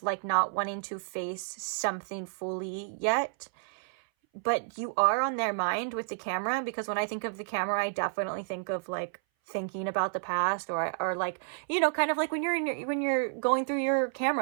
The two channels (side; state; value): left; silent; 57 dB below the other